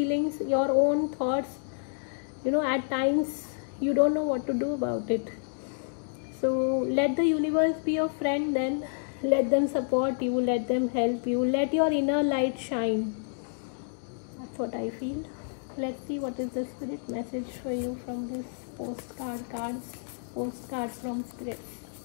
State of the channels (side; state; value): right; silent; digital silence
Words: your own thoughts, at times you don't know what to do about it. So let the universe be your friend then. Let them support you, let them help you, let your inner light shine. That's what I feel. Let's see what is the spirit message for you from this postcard from spirit.